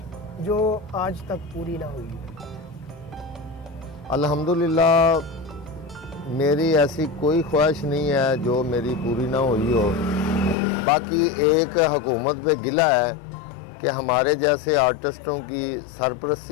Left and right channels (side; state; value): right; drops out; at 10.6 s